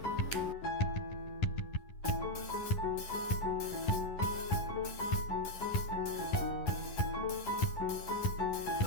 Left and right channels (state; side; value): late; right; 11 ms